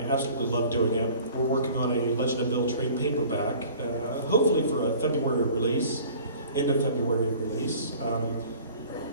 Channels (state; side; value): inverted; both; correlation -0.47